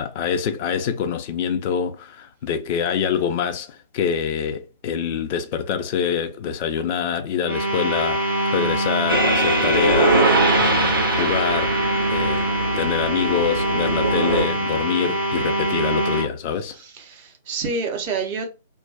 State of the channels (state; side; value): inverted; both; correlation -0.35